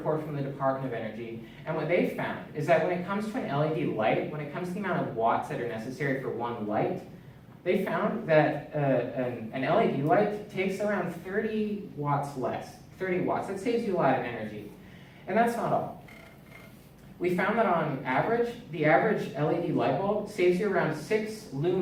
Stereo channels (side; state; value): both; identical; correlation 1.00